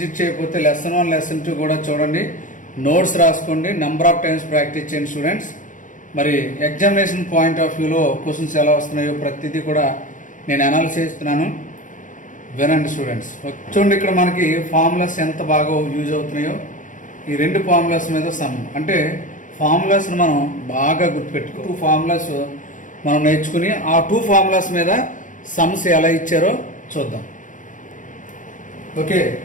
చేయకపోతే లెసన్ 1, లెసన్ 2 కూడా చూడండి, నోట్స్ రాసుకోండి, నెంబర్ ఆఫ్ టైమ్స్ ప్రాక్టీస్ చేయండి స్టూడెంట్స్. మరి ఎగ్జామినేషన్ పాయింట్ ఆఫ్ వ్యూలో క్వశ్చన్స్ ఎలా వస్తున్నాయో ప్రతిదీ కూడా నేను అనాలిసిస్ చేస్తున్నాను, వినండి స్టూడెంట్స్. చూడండి, ఇక్కడ మనకి ఫార్ములాస్ ఎంత బాగా యూజ్ అవుతున్నాయో. ఈ రెండు ఫార్ములాస్ మీద సమ్ అంటే ఫార్ములాస్ని మనం బాగా గుర్తుపెట్టుకో. 2 ఫార్ములాస్ మనం నేర్చుకుని ఆ 2 ఫార్ములాస్ మీద సమ్స్ ఎలా ఇచ్చారో చూద్దాం. Okay,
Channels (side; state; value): right; late; 0.37 ms